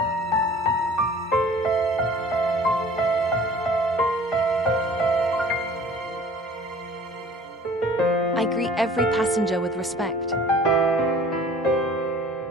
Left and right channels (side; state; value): both; normal; correlation 0.49